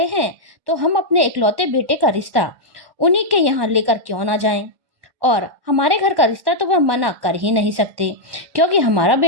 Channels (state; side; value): late; left; 1.1 ms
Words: हैं तो हम अपने इकलौते बेटे का रिश्ता उन्हीं के यहाँ लेकर क्यों ना जाएं। और हमारे घर का रिश्ता तो वह मना कर ही नहीं सकते, क्योंकि हमारा